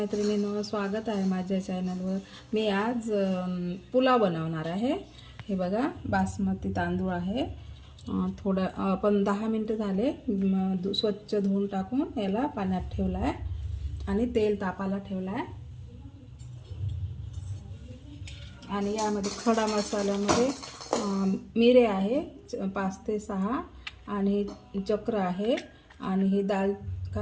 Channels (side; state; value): both; identical; correlation 1.00